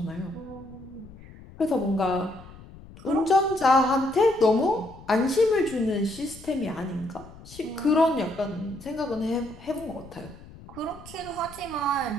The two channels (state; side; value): noise; left; rumble, 19 dB below the sound